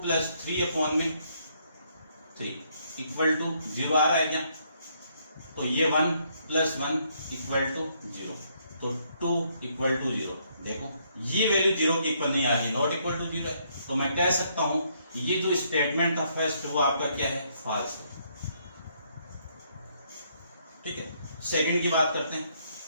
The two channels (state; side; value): inverted; both; correlation -0.71